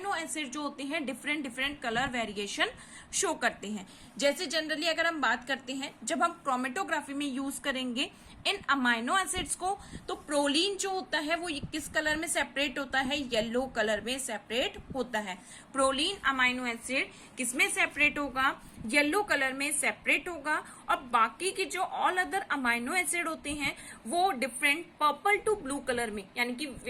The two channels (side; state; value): both; identical; correlation 1.00